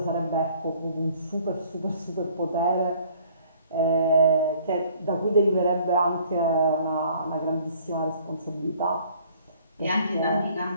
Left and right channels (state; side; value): inverted; both; correlation -0.57